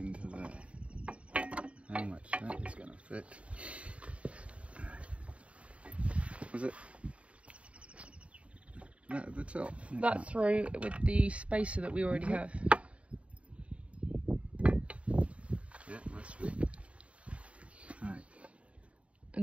there. How much that is going to fit? Was it that at the top? That through with the spacer that we already have. Yeah, must be. Right.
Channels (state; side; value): late; left; 0.063 ms